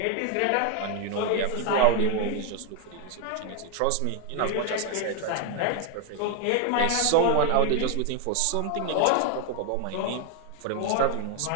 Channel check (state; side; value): different; both; correlation 0.01